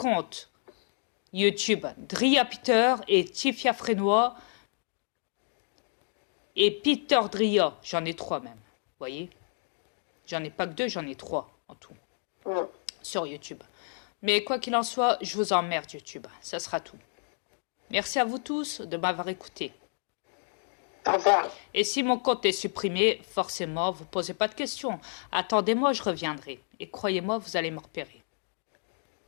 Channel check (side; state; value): right; silent; digital silence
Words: YouTube. Dria Peter et Tifia Frénois. Et Peter Dria. J'en ai 3 même. Vous voyez? J'en ai pas que 2, j'en ai 3 en tout. Sur YouTube. Mais quoi qu'il en soit, je vous emmerde YouTube. Ça sera tout. Merci à vous tous de m'avoir écouté. Au revoir. Et si mon compte est supprimé, forcément, vous ne posez pas de questions. Attendez-moi, je reviendrai. Et croyez-moi, vous allez me repérer.